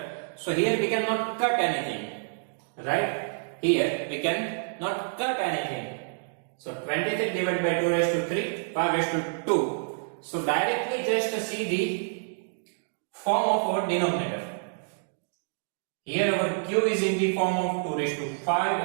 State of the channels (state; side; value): silent; left; digital silence